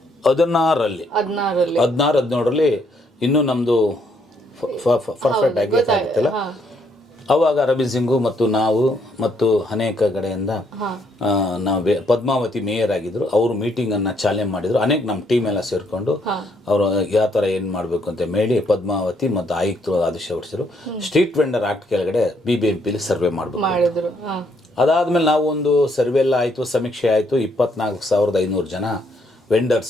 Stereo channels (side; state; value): both; normal; correlation 0.71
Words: 16-17 ಇನ್ನೂ ನಮ್ಮದು ಪರ್ಫೆಕ್ಟ್ ಆಗಿ ಗೊತ್ತಾಗುತ್ತಿಲ್ಲ. ಅವಾಗ ಅರವಿಂದ್ ಸಿಂಗು ಮತ್ತು ನಾವು ಮತ್ತು ಅನೇಕ ಕಡೆಯಿಂದ ನಾವು ಪದ್ಮಾವತಿ ಮೇಯರ್ ಆಗಿದ್ರು, ಅವರು ಮೀಟಿಂಗನ್ನು ಚಾಲನೆ ಮಾಡಿದರು. ಅನೇಕ ನಮ್ಮ ಟೀಮ್ ಎಲ್ಲ ಸೇರಿಕೊಂಡು ಅವರು ಯಾವ ಥರ ಏನು ಮಾಡಬೇಕು ಅಂತ ಹೇಳಿ ಪದ್ಮಾವತಿ ಮತ್ತು ಆಯುಕ್ತರು ಆದೇಶ ಹೊರಡಿಸಿದ್ರು. ಸ್ಟ್ರೀಟ್ ವೆಂಡರ್ ಆಕ್ಟ್ ಕೆಳಗಡೆ BBMPಲಿ ಸರ್ವೆ ಮಾಡಬೇಕು. ಅದಾದಮೇಲೆ ನಾವು ಒಂದು ಸರ್ವೆ ಎಲ್ಲ ಆಯಿತು, ಸಮೀಕ್ಷೆ ಆಯಿತು. 24,500 ಜನ